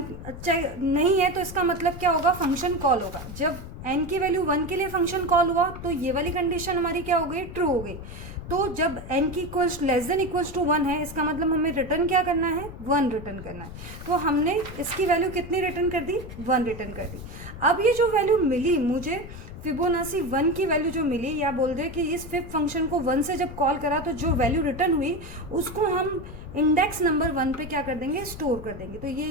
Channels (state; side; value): noise; left; rumble, 12 dB below the sound